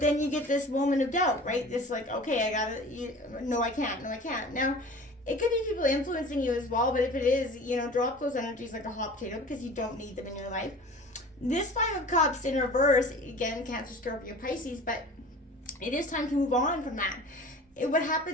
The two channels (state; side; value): normal; both; correlation 0.41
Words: you get this moment of doubt, right? This okay, I can't. Now, it could be people influencing you as well, but if it is, drop those energies like a hot potato, because you don't need them in your life. This Five of Cups in reverse, again, Cancer, Scorpio, Pisces, but it is time to move on from that. What